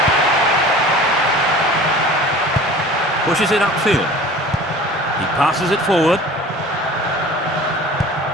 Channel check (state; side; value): normal; both; correlation 0.42